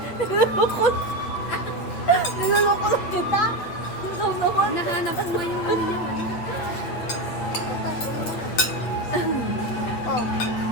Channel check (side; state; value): right; late; 9.0 ms